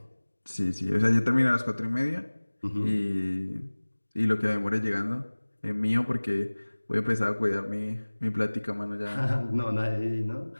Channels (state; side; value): inverted; both; correlation -1.00